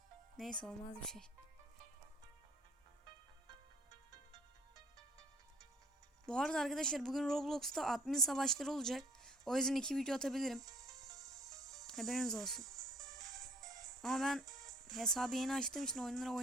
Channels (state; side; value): normal; both; correlation 0.57